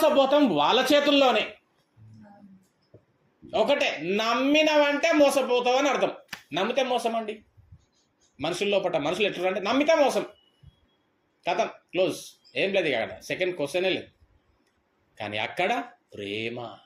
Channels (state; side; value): identical; both; correlation 1.00